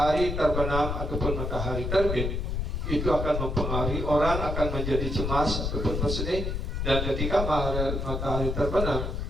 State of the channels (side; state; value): left; noise; rumble, 2 dB below the sound